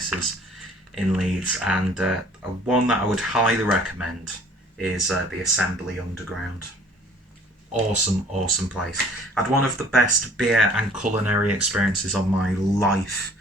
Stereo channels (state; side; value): normal; both; correlation 0.54